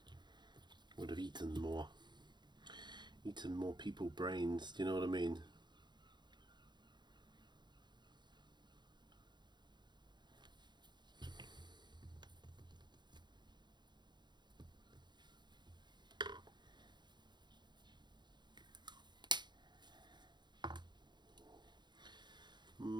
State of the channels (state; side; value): late; left; 0.21 ms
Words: would have eaten more people brains, do you know what I mean?